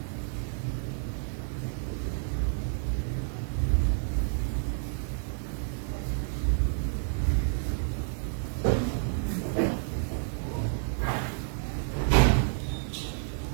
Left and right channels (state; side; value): silent; left; digital silence